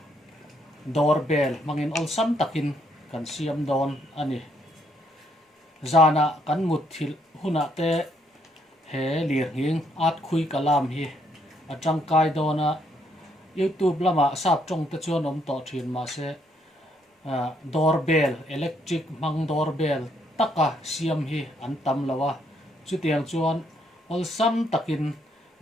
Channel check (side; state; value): both; normal; correlation 0.71